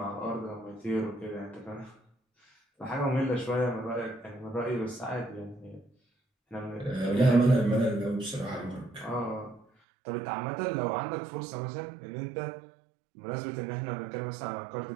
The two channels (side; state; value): left; drops out; at 9.7 s